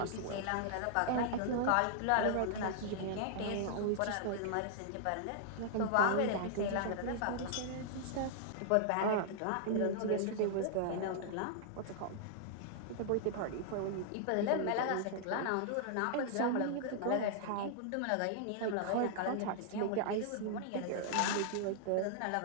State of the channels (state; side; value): different; both; correlation -0.01